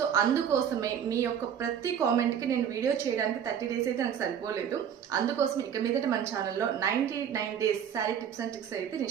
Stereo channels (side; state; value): left; quieter; 8.6 dB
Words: అందుకోసమే మీ యొక్క ప్రతి కామెంట్ కి నేను వీడియో చేయడానికి 30 డేస్ అయితే నాకు సరిపోలేదు. అందుకోసం ఇక మీదట మన ఛానల్లో 99 days sari tips and tricks అయితే